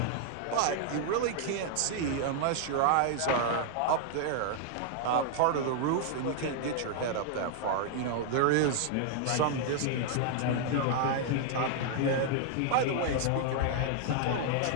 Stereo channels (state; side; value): different; both; correlation -0.01